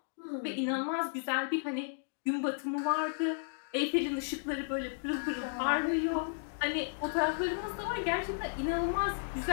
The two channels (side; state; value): right; silent; digital silence